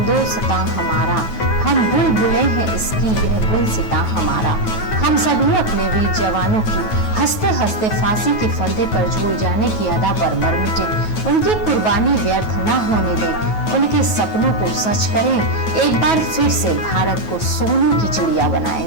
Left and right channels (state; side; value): late; right; 9.3 ms